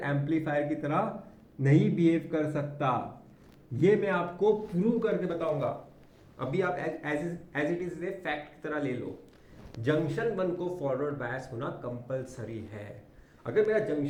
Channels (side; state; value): both; identical; correlation 1.00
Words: एम्पलीफायर की तरह नहीं बिहेव कर सकता। ये मैं आपको प्रूव करके बताऊंगा। अभी आप एज इट इज फैक्ट की तरह ले लो, जंक्शन 1 को फॉरवर्ड बायस होना कंपलसरी है। अगर मेरा